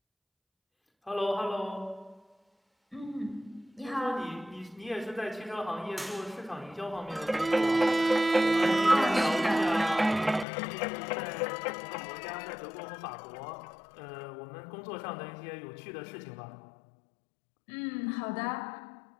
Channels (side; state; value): right; drops out; at 10.5 s